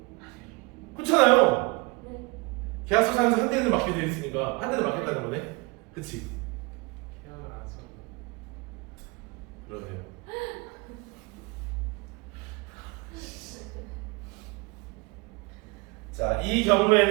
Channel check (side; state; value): left; quieter; 26.5 dB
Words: 그렇잖아요. 계약서상에서 한 대는 맞게 돼 있으니까 한 대는 맞겠다는 거네? 그치? 계약을 안 써. 그러네요. 자, 이